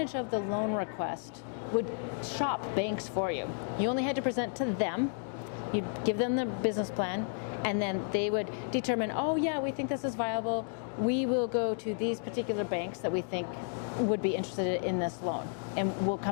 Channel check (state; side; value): silent; right; 56 dB below the other